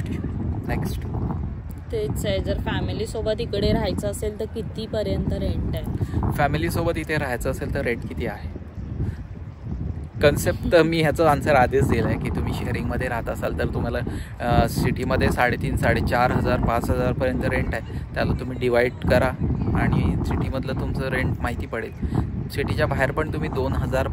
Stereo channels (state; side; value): identical; both; correlation 1.00